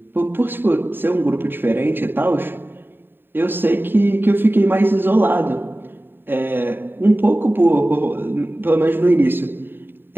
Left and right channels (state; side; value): late; left; 0.097 ms